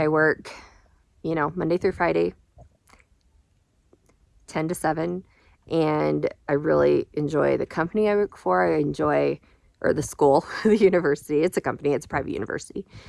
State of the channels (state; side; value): identical; both; correlation 1.00